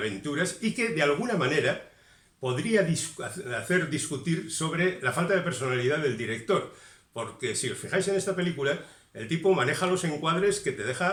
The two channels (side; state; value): both; identical; correlation 1.00